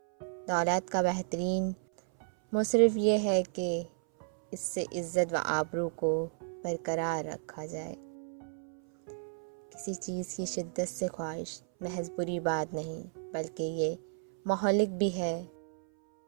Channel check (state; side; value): silent; left; 56 dB below the other